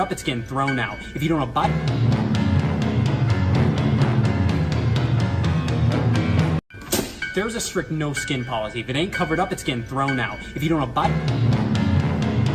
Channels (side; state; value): both; identical; correlation 1.00